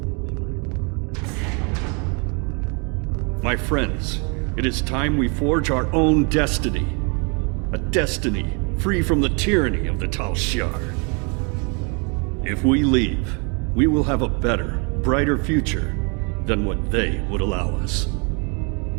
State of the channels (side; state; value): left; quieter; 34.1 dB